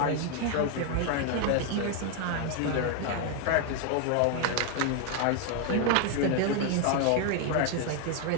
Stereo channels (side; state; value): both; different; correlation 0.01